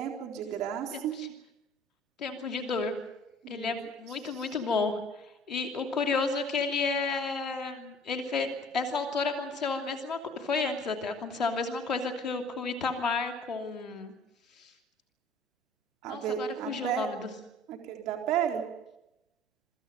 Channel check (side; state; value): both; normal; correlation 0.51